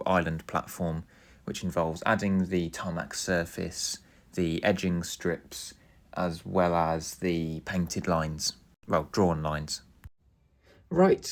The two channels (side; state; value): both; identical; correlation 1.00